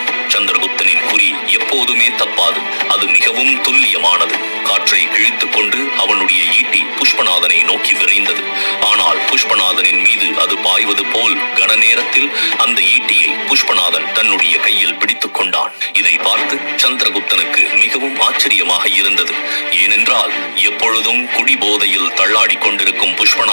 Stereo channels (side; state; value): both; inverted; correlation -1.00